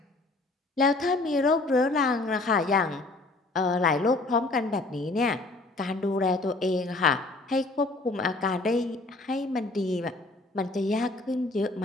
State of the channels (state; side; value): quieter; right; 3.1 dB